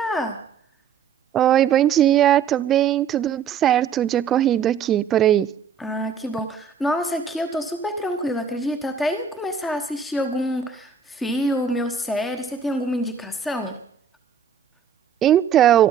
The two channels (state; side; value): quieter; left; 7.3 dB